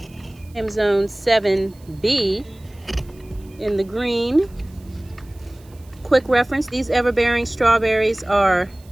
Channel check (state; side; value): noise; right; hiss, 29 dB below the sound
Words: I'm zone 7B in the green. Quick reference, these everbearing strawberries are